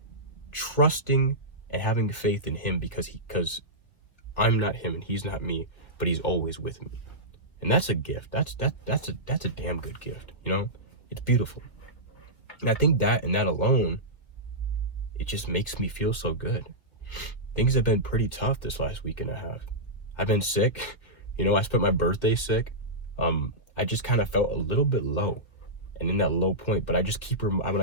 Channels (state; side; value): late; right; 1.9 ms